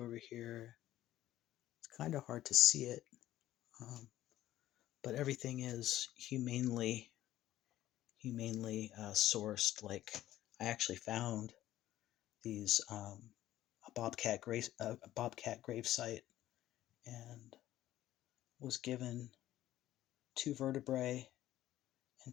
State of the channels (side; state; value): right; quieter; 13.9 dB